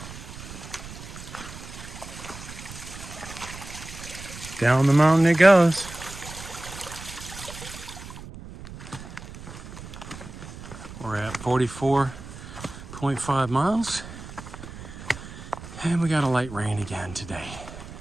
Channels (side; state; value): right; noise; rumble, 13 dB below the sound